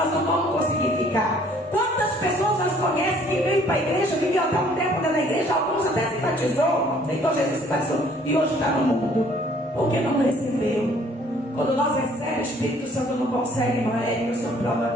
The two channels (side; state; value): both; normal; correlation 0.58